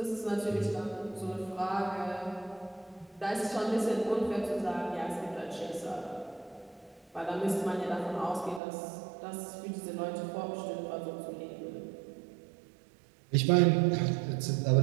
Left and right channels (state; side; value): drops out; left; at 8.6 s